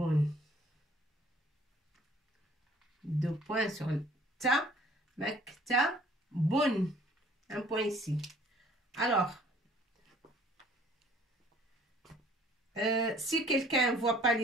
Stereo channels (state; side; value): normal; both; correlation 0.56